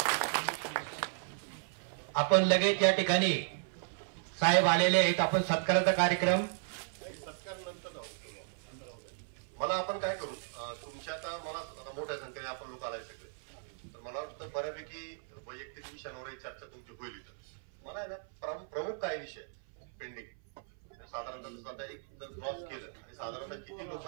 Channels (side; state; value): left; silent; 54 dB below the other